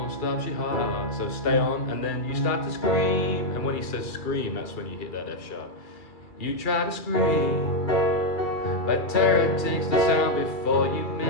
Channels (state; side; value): late; right; 2.3 ms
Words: stops your heart. So stay on, and then you start to scream. And when he says scream, that's when you hit that F sharp. You try to scream, but terror takes the sound before you